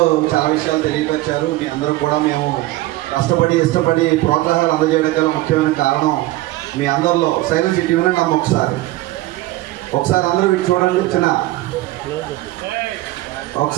చాలా విషయాలు తెలియపరిచారు. మీ అందరూ కూడా మేము కష్టపడి ఇష్టపడి ప్రోత్సాహాలు అందజేయడం గల ముఖ్యమైన కారణం మీ అందరిలో సైలెన్స్ ఇటు వినండి అమ్మ ఒకసారి అందరూ ఇటు చూడండి.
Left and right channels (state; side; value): quieter; left; 17.6 dB